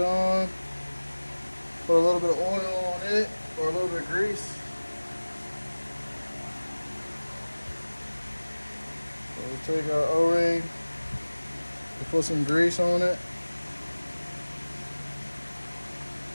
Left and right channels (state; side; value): inverted; both; correlation -1.00